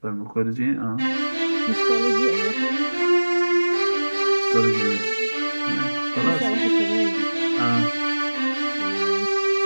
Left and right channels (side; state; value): both; inverted; correlation -1.00